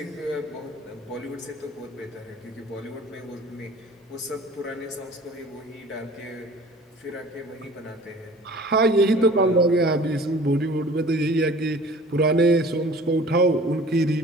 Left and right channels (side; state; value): both; normal; correlation 0.46